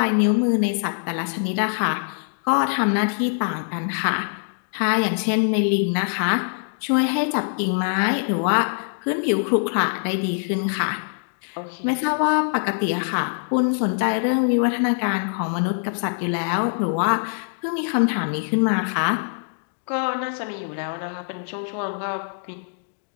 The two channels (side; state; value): right; silent; digital silence